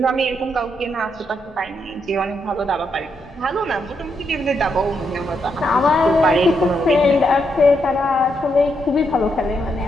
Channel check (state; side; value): normal; both; correlation 0.79